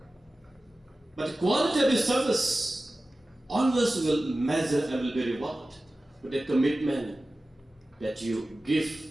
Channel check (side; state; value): both; normal; correlation 0.96